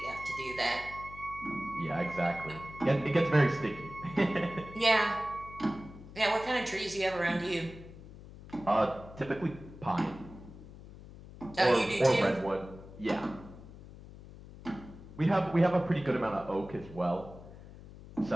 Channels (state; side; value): noise; left; hum, 16 dB below the sound